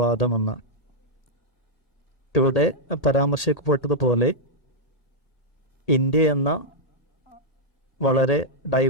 ഇവിടെ പരാമർശിക്കപ്പെട്ടതുപോലെ ഇന്ത്യ എന്ന വളരെ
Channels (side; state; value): right; late; 1.8 ms